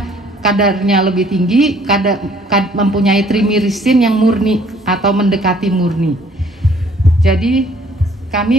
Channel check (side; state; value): both; normal; correlation 0.59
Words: kadarnya lebih tinggi, mempunyai trimirisin yang murni atau mendekati murni. Jadi